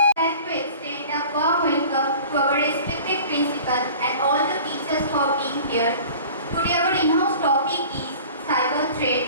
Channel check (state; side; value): inverted; both; correlation -0.43